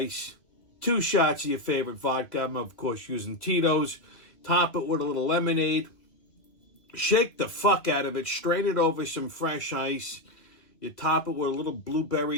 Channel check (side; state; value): right; late; 2.1 ms